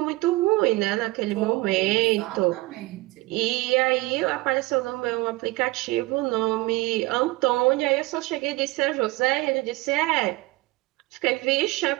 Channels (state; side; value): quieter; left; 21.0 dB